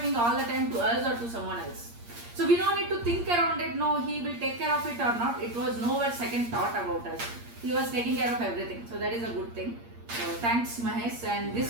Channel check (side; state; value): left; late; 8.6 ms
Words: all the time to us or to someone else. So we don't need to think around it, no, he will take care of it or not. It was nowhere second thought about us. He was taking care of everything. So that is a good thing. So thanks Mahesh, and